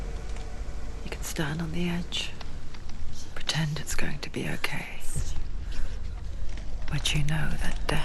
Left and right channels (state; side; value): identical; both; correlation 1.00